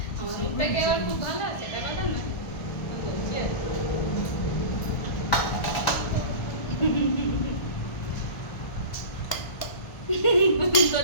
আমার মুখটা কি আবার খুব ভালো আছে, এটা কথা না, আমি বলছি আর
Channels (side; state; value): right; late; 1.4 ms